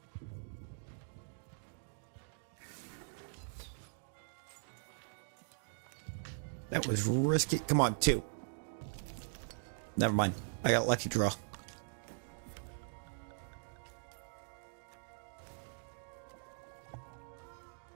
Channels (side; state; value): left; silent; digital silence